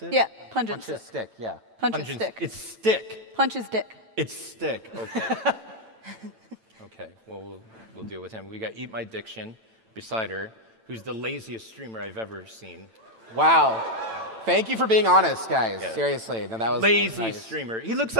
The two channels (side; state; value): left; late; 9.0 ms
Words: it? Yeah, pungent Punch his stick, yeah. Punch his stick. It's stick. Punch his dick. It's stick. Okay. Okay. Well, we'll deal with him. We got EatMyDiction beside her, who's the laziest streamer I've ever seen. Wow. Thank you for being honest, guys. Yeah. Seriously. No, that was Lazy nice. streamer. He looks